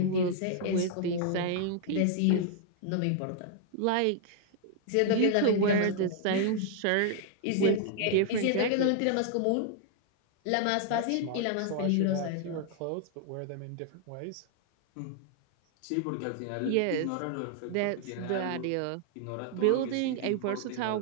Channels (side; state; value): both; different; correlation 0.00